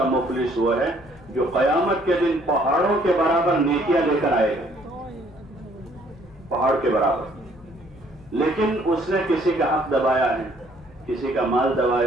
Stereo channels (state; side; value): noise; left; hum, 25 dB below the sound